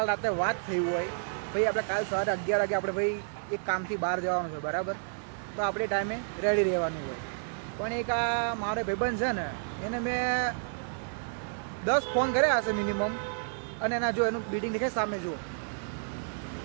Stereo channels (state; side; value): silent; left; digital silence